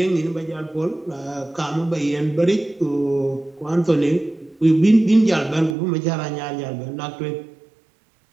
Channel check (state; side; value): drops out; left; at 5.8 s